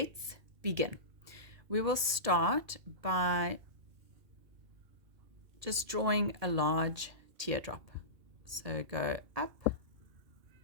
begin. We will start by just drawing a large teardrop. So go up,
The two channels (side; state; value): left; late; 1.8 ms